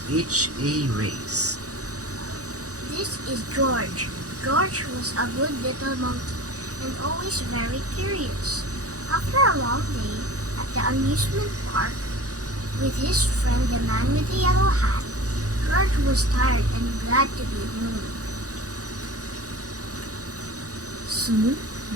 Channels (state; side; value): late; left; 0.66 ms